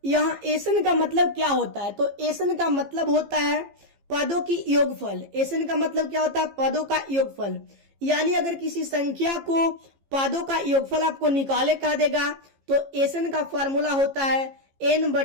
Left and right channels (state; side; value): late; left; 15 ms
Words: यहां एसन का मतलब क्या होता है? तो एसन का मतलब होता है पदों की योगफल। एसन का मतलब क्या होता है? पदों का योगफल। यानी अगर किसी संख्या को पदों का योगफल आपको निकाले कह देगा तो एसन का फॉर्मूला होता है